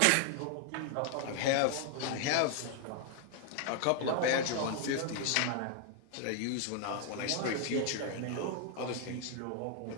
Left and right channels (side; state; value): both; different; correlation 0.00